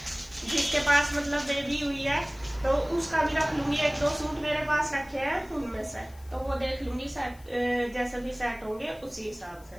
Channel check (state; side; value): noise; left; hiss, 26 dB below the sound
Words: जिसके पास मतलब बेबी हुई है, तो उसका भी रख लूंगी। 1-2 सूट मेरे पास रखे हैं उनमें से, तो वो देख लूंगी जैसे भी सेट होंगे उसी हिसाब से।